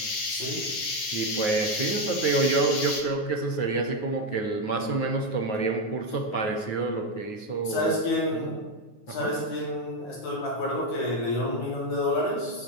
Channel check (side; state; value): right; late; 9.5 ms